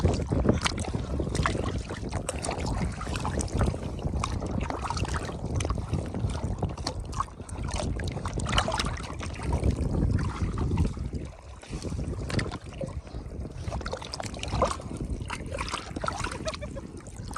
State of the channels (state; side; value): identical; both; correlation 1.00